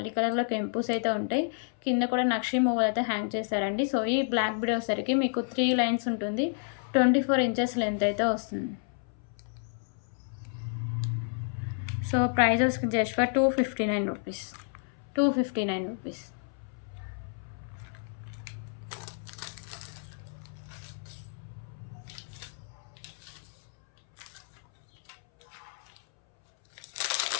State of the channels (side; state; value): right; silent; 58 dB below the other